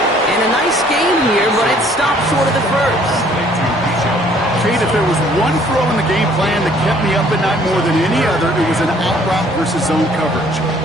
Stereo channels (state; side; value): normal; both; correlation 0.59